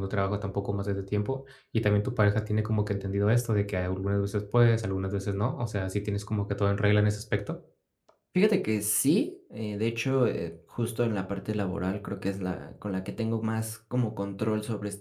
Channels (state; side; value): identical; both; correlation 1.00